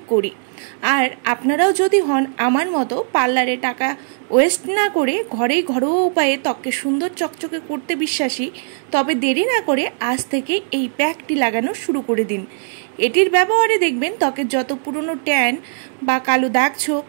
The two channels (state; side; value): silent; left; digital silence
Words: করি। আর আপনারাও যদি হন আমার মতো পার্লারে টাকা ওয়েস্ট না করে ঘরেই ঘরোয়া উপায়ে ত্বককে সুন্দর চকচকে করতে বিশ্বাসী, তবে দেরি না করে আজ থেকে এই প্যাকটি লাগানো শুরু করে দিন। এটির ব্যবহারে দেখবেন ত্বকের যত পুরনো ট্যান বা কালো দাগ ছোপ,